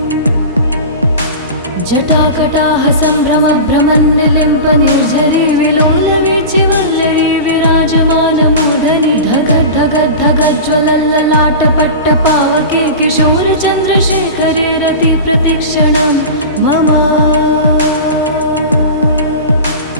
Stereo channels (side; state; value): both; inverted; correlation -0.30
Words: जटाकटाह सम्भ्रमभ्रमन्निलिम्पनिर्झरी विलोलवीचिवल्लरी विराजमानमूर्धनि धगद्धगद्धगज्ज्वलल्ललाटपट्टपावके किशोरचन्द्रशेखरे रति प्रतिक्षणं मम